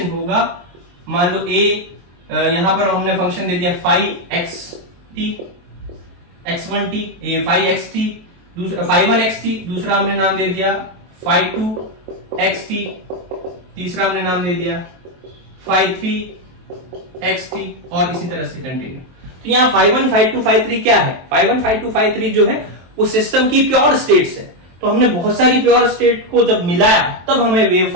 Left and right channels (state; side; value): late; left; 23 ms